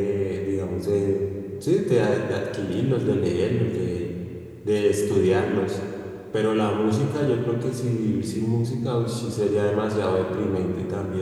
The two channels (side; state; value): both; identical; correlation 1.00